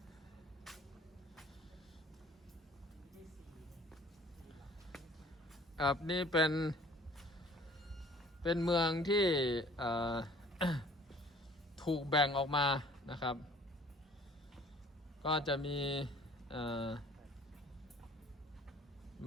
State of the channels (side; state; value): both; normal; correlation 0.52